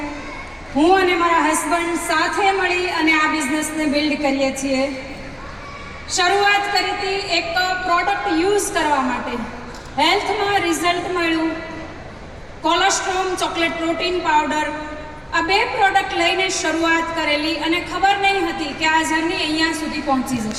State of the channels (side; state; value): both; identical; correlation 1.00